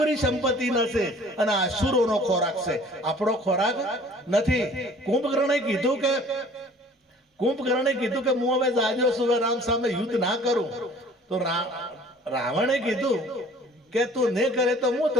સંપત્તિ નથી, અને આસુરોનો ખોરાક છે, આપણો ખોરાક નથી. કુંભકર્ણે કીધું કે હું હવે જાજો છું, રામ સામે યુદ્ધ ના કરું. તો રાવણે કીધું કે તું નહીં કરે તો હું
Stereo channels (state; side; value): normal; both; correlation 0.51